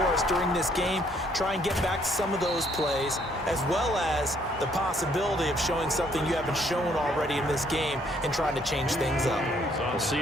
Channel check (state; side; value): normal; both; correlation 0.66